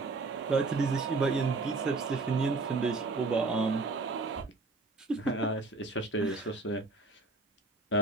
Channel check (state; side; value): quieter; left; 3.6 dB